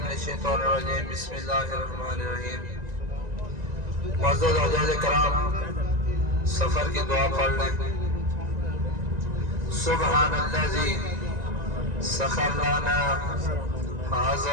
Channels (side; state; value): left; late; 1.9 ms